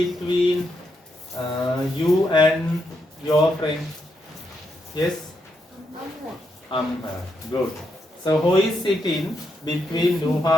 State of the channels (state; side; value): normal; both; correlation 0.81